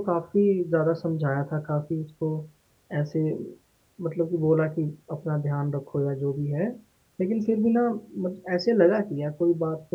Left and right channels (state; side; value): identical; both; correlation 1.00